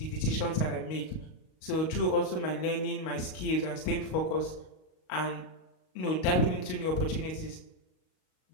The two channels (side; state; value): right; late; 38 ms